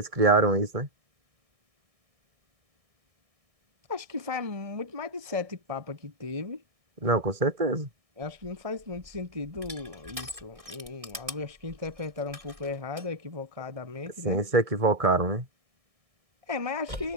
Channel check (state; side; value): late; left; 1.6 ms